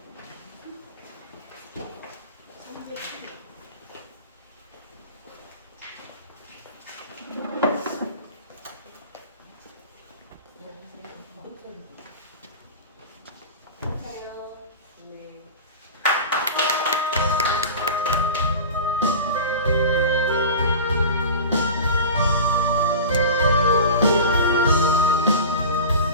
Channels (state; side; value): inverted; both; correlation -0.32